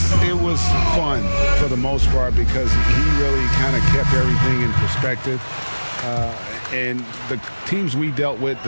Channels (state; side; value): inverted; both; correlation -1.00